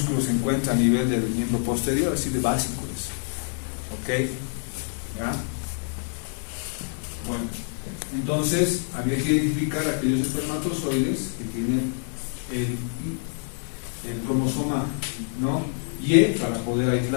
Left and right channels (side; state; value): right; silent; digital silence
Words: se encuentra a nivel del miembro posterior, así de básico es. ¿Ok? ¿Ya? Bueno, entonces había que identificar aquellos espermatozoides que tienen el cromosoma, ¿no?, Y para poder